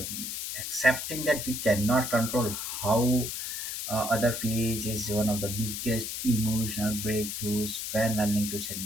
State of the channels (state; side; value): noise; left; hiss, 5 dB below the sound